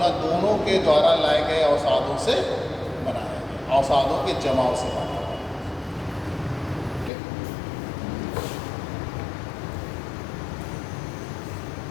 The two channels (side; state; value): right; drops out; at 7.1 s